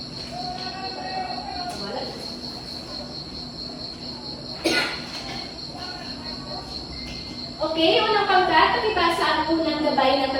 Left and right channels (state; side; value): identical; both; correlation 1.00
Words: Okay, unang pangkat, pakibasa ang unang gabay na